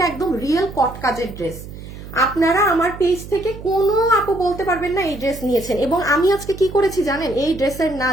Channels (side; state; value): right; noise; hum, 13 dB below the sound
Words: একদম রিয়েল কট কাজের ড্রেস। আপনারা আমার পেজ থেকে কোনো আপু বলতে পারবেন না এই ড্রেস নিয়েছেন। এবং আমি আজকে কি করেছি জানেন, এই ড্রেসের না